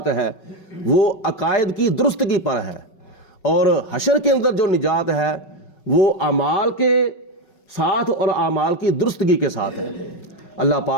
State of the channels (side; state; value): right; late; 5.4 ms